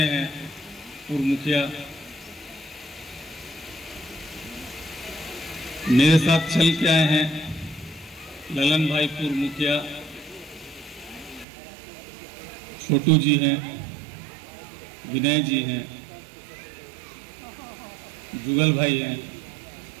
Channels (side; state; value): left; drops out; at 11.5 s